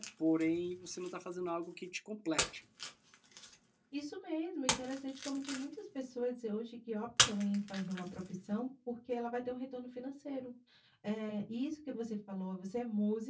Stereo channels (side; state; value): both; identical; correlation 1.00